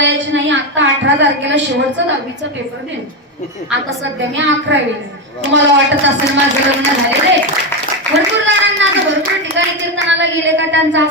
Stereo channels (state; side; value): normal; both; correlation 0.11